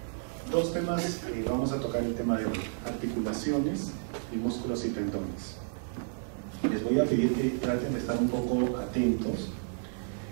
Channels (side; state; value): left; silent; digital silence